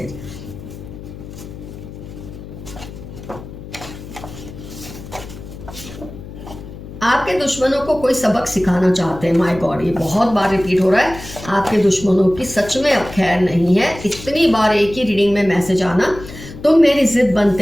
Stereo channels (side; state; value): left; noise; hum, 14 dB below the sound